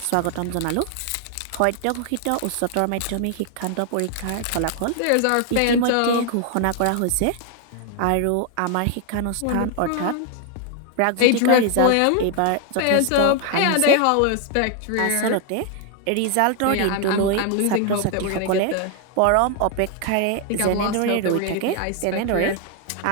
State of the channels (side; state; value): both; different; correlation 0.00